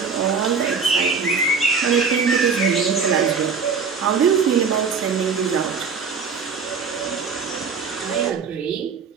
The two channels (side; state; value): left; quieter; 5.4 dB